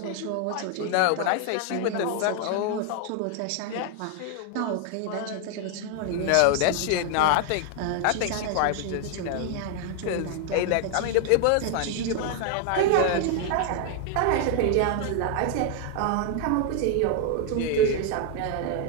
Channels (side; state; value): both; different; correlation 0.00